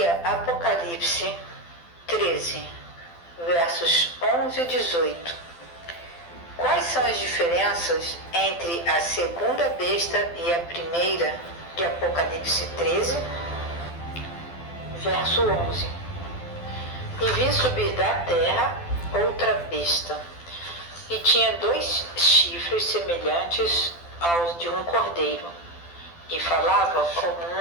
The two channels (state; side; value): late; right; 12 ms